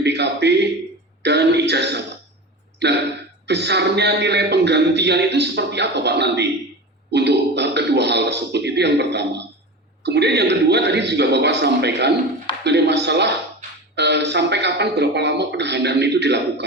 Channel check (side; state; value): both; normal; correlation 0.29